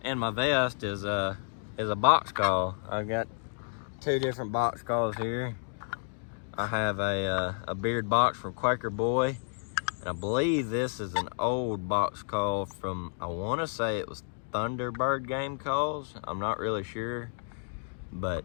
vest is a box call. I've got 2 different box calls here. I have a beard box from Quaker Boy, and I believe this is an old box call from, I want to say it was Thunderbird Game Calls. I'm not really sure,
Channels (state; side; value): silent; right; digital silence